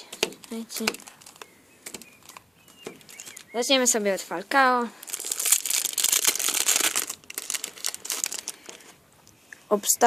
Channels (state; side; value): normal; both; correlation 0.97